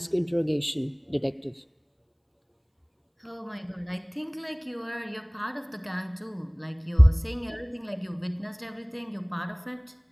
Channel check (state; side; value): identical; both; correlation 1.00